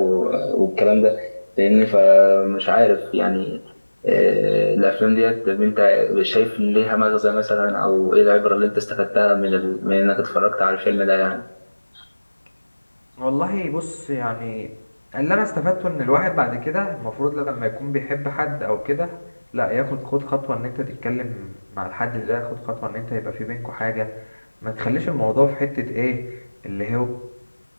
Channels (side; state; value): both; inverted; correlation -1.00